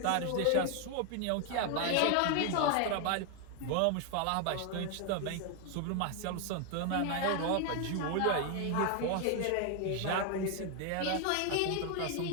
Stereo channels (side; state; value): both; different; correlation 0.01